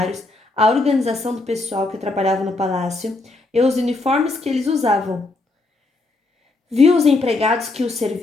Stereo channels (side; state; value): right; quieter; 3.2 dB